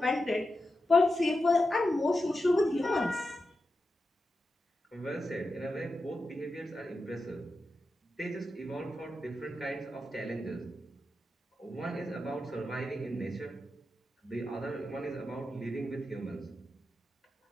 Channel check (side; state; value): both; normal; correlation 0.89